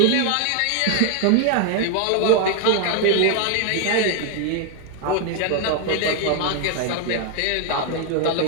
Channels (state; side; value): different; both; correlation 0.00